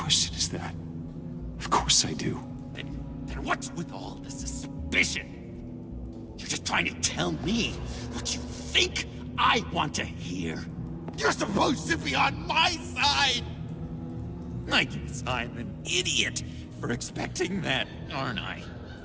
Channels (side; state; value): both; identical; correlation 1.00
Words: is that? Of course I do. Then what's with all the suspicion? You're just trying to tell me what you think I want to hear. You're supposed to be on my side! I guess I'm an idiot for expecting that, aren't I?